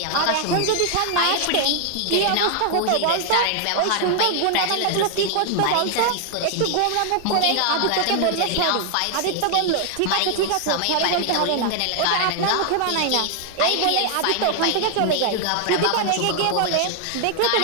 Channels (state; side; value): different; both; correlation 0.00